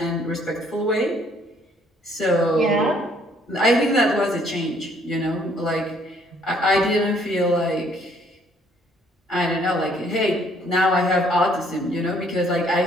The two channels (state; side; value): normal; both; correlation 0.64